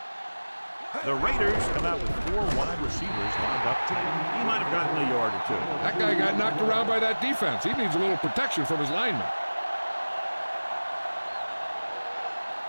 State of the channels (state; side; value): inverted; both; correlation -1.00